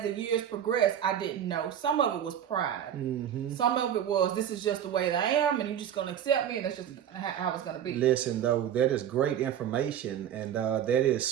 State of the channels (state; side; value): quieter; left; 9.8 dB